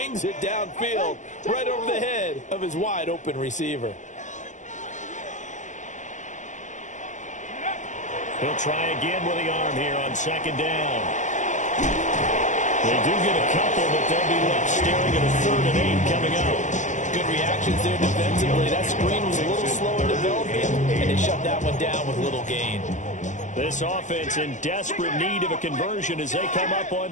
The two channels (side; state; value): right; late; 0.36 ms